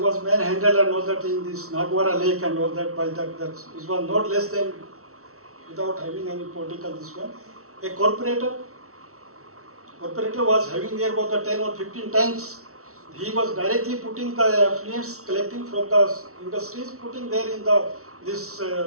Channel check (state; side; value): late; left; 0.64 ms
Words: manhandled and all that in this Nagwara lake and all that by that was not less than, without having any political this one, a corporator was having there about the 10 or 15 tanks. He was directly putting the affluents collecting from the industries, putting there in this